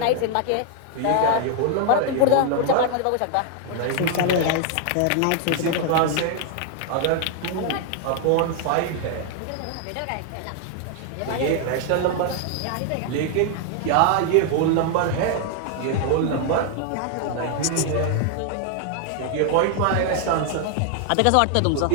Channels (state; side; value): different; both; correlation 0.00